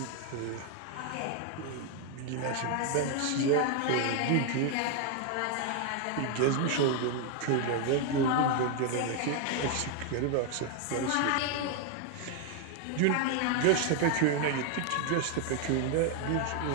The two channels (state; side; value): different; both; correlation 0.01